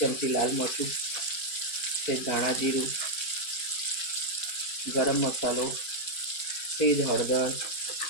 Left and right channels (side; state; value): right; late; 4.4 ms